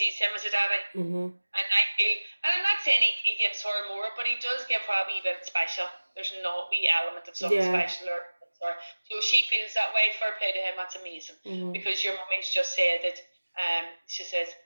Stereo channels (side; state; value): both; inverted; correlation -1.00